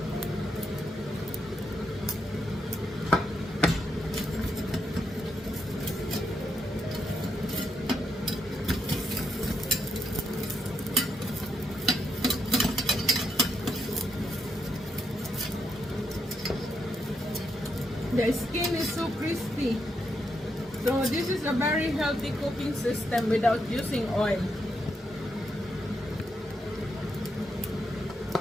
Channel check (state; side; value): normal; both; correlation 0.80